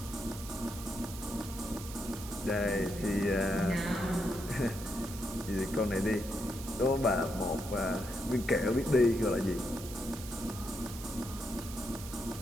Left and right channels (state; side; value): noise; right; hiss, 13 dB below the sound